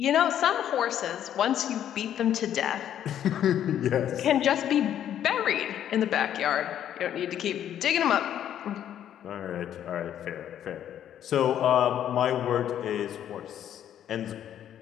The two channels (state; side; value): quieter; right; 10.4 dB